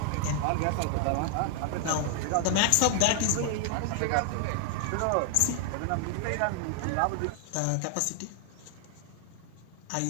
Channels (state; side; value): different; both; correlation 0.00